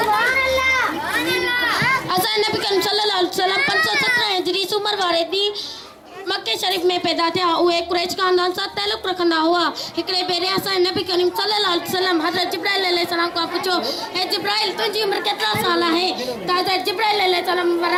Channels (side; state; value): both; identical; correlation 1.00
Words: वसल्लम। असांजे नबी करीम सल्लल्लाहु अलैहि वसल्लम 517 हिजरी उमर वारे ॾींहुं मक्के शरीफ में पैदा थिया। उहे कुरैश खानदान सां ताल्लुक़ रखंदा हुआ। हिकिड़े भेरे असांजे नबी करीम सल्लल्लाहु अलैहि वसल्लम हज़रत जिब्राइल अलैहिस्सलाम खां पुछो, हे जिब्राइल तुंहिंजी उमिरि केतिरा साल आहे? त हज़रत जिब्राइल अलैहिस्सलाम